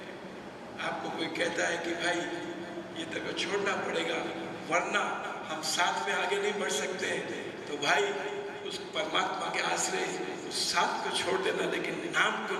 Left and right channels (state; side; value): identical; both; correlation 1.00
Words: आपको कोई कहता है कि भाई ये तक छोड़ना पड़ेगा वरना हम साथ में आगे नहीं बढ़ सकते, तो भाई उस परमात्मा के आश्रय उस साथ को छोड़ देना, लेकिन नाम को